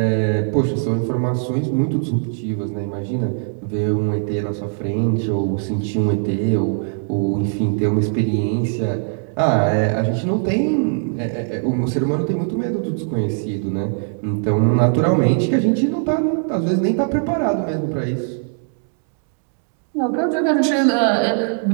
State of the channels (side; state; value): left; silent; digital silence